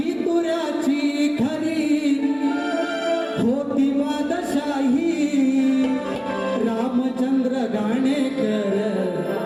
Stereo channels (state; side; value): identical; both; correlation 1.00